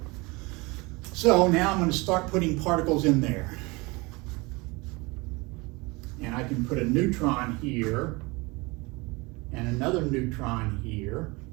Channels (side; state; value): left; quieter; 25.2 dB